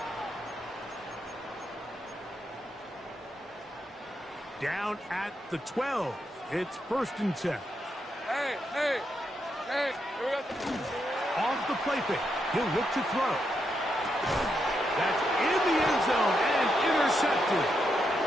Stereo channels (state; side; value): normal; both; correlation 0.82